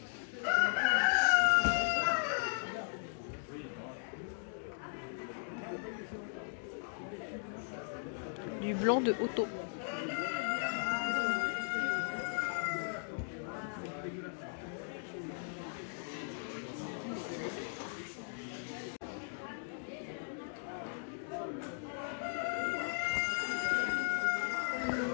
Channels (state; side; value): silent; right; digital silence